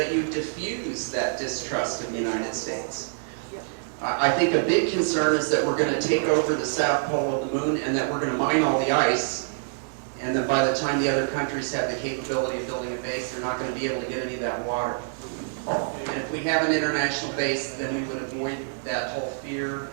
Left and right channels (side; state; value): left; silent; digital silence